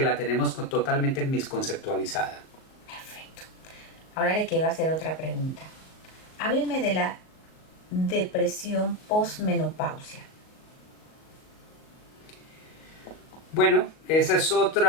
la tenemos totalmente misconceptualizada. Perfecto. Ahora le quiero hacer otra pregunta. Hábleme de la depresión posmenopausia. Bueno, ese es otro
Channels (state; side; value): late; right; 38 ms